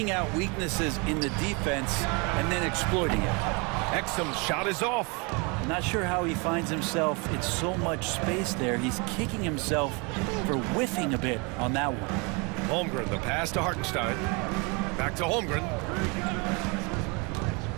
out weaknesses in the defense and then exploiting it. Exum's shot is off. Not sure how he finds himself in so much space there. He's kicking himself for whiffing a bit on that one. Holmgren, the pass to Hartenstein. Back to Holmgren.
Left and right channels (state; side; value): quieter; left; 30.5 dB